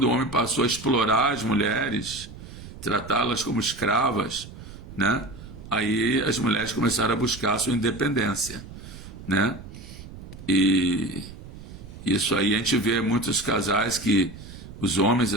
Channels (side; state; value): right; noise; rumble, 14 dB below the sound